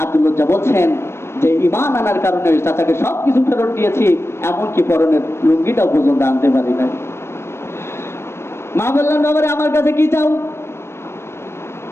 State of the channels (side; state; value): right; late; 0.12 ms